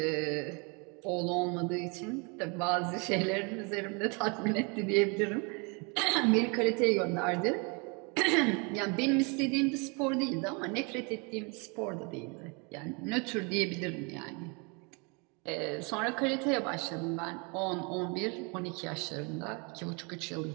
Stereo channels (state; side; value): quieter; left; 32.1 dB